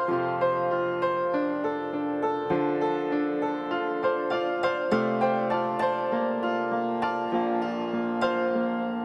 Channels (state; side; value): identical; both; correlation 1.00